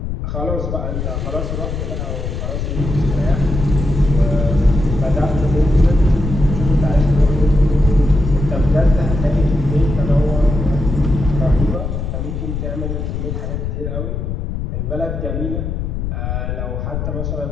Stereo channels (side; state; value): left; noise; rumble, 4 dB below the sound